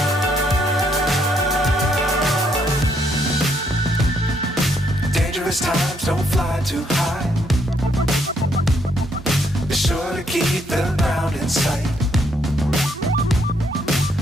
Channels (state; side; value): normal; both; correlation 0.72